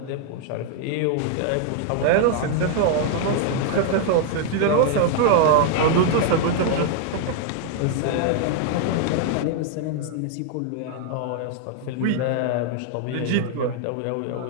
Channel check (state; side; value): different; both; correlation 0.00